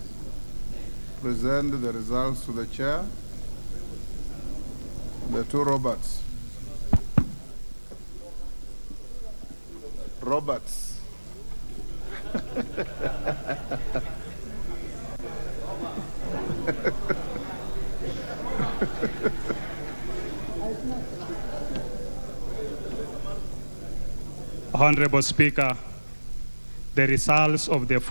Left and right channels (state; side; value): inverted; both; correlation -1.00